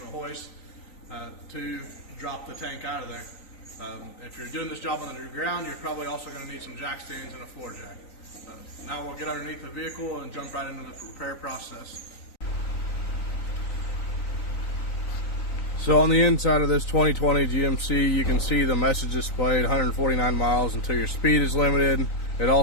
a hoist to drop the tank out of there. If you're doing this job on the ground, you're probably also going to need some jack stands and a floor jack. Now we'll get underneath the vehicle and jump right into the repair process. So on the inside of this 2020 GMC, you can see the message displayed 149 miles until your speed is limited. It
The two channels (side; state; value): right; late; 3.9 ms